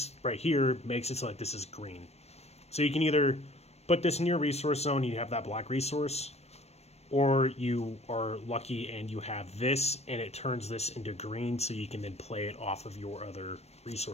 right here makes it so like this is green. So you can either put this in your resource zone, you have that black resource, or you are lucky and you have this, and it turns this into green, so you can then play it off of your other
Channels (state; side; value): late; right; 0.31 ms